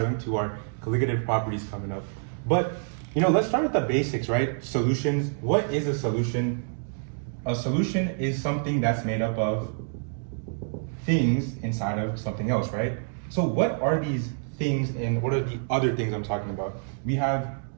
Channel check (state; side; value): silent; left; digital silence